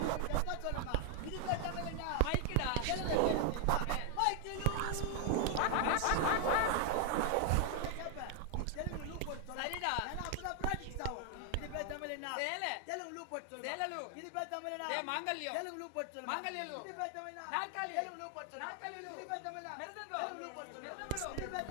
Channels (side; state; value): both; different; correlation 0.00